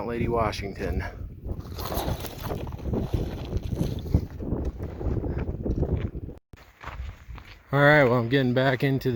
Lady Washington. All right, well, I'm getting back into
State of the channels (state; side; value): identical; both; correlation 1.00